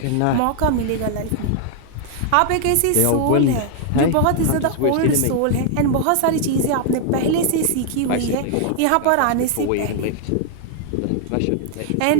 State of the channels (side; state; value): both; different; correlation 0.00